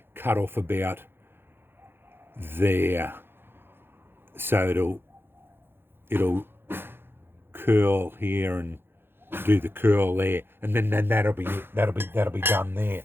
cut off about there. So it'll curl here and do the curl there, and then that'll be done there.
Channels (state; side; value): late; left; 0.10 ms